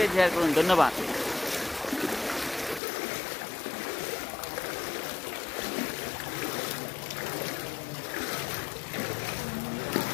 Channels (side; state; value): right; drops out; at 2.8 s